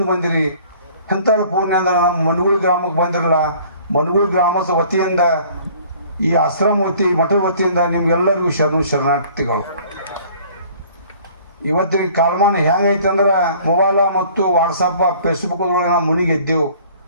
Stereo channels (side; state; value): both; inverted; correlation -0.52